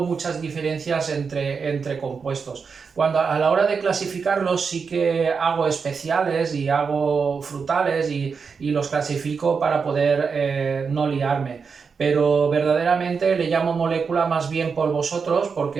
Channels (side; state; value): left; quieter; 5.5 dB